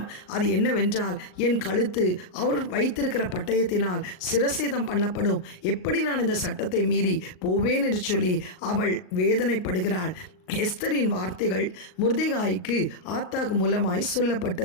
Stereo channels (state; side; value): late; right; 38 ms